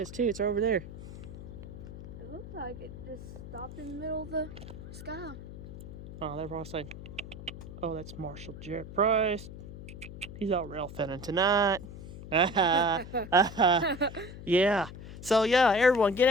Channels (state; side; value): noise; left; hum, 12 dB below the sound